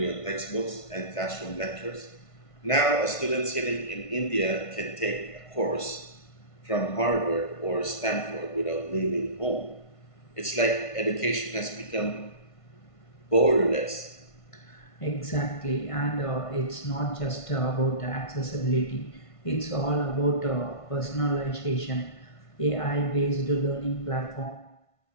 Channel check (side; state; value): right; late; 1.5 ms